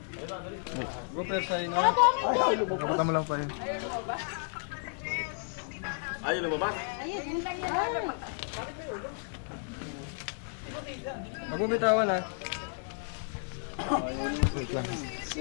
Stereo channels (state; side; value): silent; right; 56 dB below the other